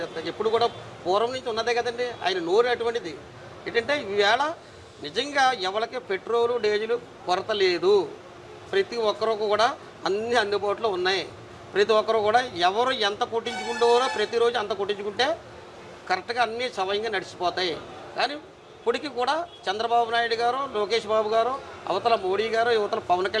ఎప్పుడు కూడా పూర్వం నుంచి ఉన్నదే కదండి ఆయన నోరు. అటువంటిది ఏంటంటే ఈవేళ నిజంగా ఎవరికి పెట్రోలు డీజిల్ కొరత లేదు. ప్రతి ఒక్కరికి కూడా అన్ని అందుబాటులో ఉన్నాయి. ప్రతి ఒక్కరు కూడా ఎవరు ఎంత కొట్టించుకుంటారో ప్రతిరోజు అంత కొట్టించుకుంటే కరెక్ట్గా అన్నీ సవయంగా నడిచిపోతాయి. కానీ ఇప్పటికీ కూడా చంద్రబాబు నాయుడు గారు, లోకేష్ బాబు గారు, అవతల మోడీ గారు, యువతల పవన్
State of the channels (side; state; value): both; identical; correlation 1.00